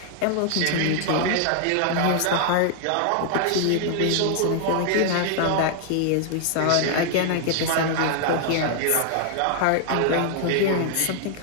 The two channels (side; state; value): both; different; correlation 0.00